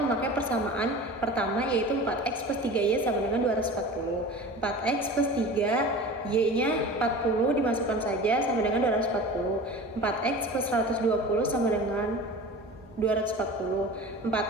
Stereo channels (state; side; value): normal; both; correlation 0.37